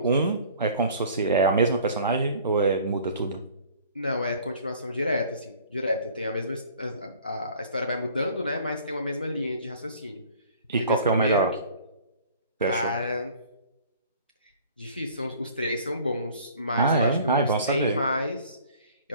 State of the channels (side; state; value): both; inverted; correlation -0.50